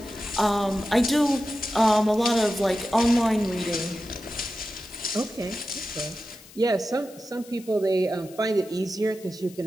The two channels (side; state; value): left; noise; hiss, 21 dB below the sound